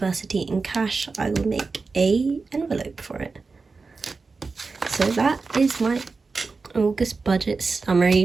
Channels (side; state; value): left; quieter; 4.3 dB